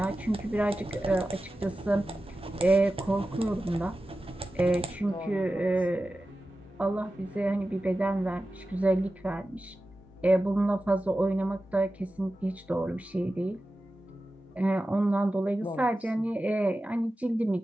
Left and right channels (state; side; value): normal; both; correlation 0.94